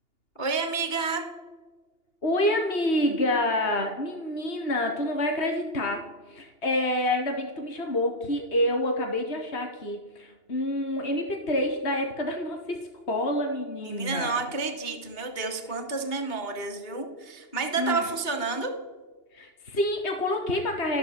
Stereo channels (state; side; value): late; right; 2.8 ms